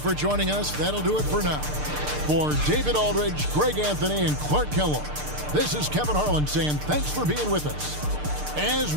joining us. That'll do it for now. For David Aldridge, Greg Anthony, and Clark Kellogg, this is Kevin Harlan saying thanks for being with us. As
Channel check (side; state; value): left; late; 6.7 ms